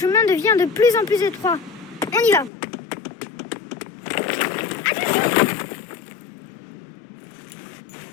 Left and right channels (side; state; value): right; drops out; at 2.5 s